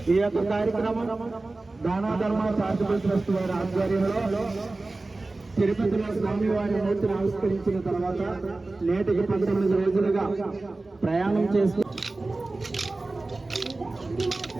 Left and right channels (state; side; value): quieter; left; 3.2 dB